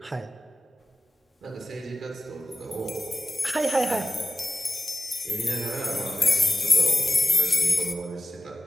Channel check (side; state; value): both; normal; correlation 0.95